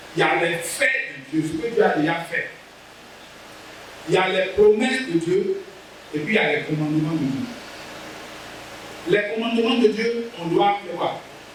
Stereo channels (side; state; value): both; identical; correlation 1.00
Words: il y a les faits de Dieu, ce que Dieu a déjà fait. Il y a les promesses de Dieu. Et puis il y a les commandements de Dieu. Les commandements de Dieu, on doit faire quoi?